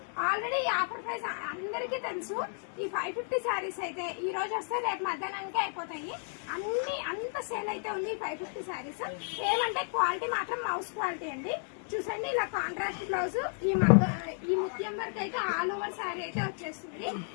ఆల్రెడీ ఈ ఆఫర్ ప్రైస్ అందరికీ తెలుసు. ఈ 550 శారీస్ అయితే ఈ రోజు వస్తే రేపు మధ్యాహ్నానికి అయిపోతాయి. అంత సేల్ అయితే ఉంది 550 శారీస్. ఏమంటే క్వాలిటీ మాత్రం మౌస్ క్వాలిటీ అండి. చూసండి, ఇలా కాంట్రాస్ట్ బ్లౌజ్, ఈ ముత్యం వర్క్ అయితే ఆల్ ఓవర్ శారీ అయితే వచ్చేస్తుంది.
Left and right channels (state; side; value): silent; right; 56 dB below the other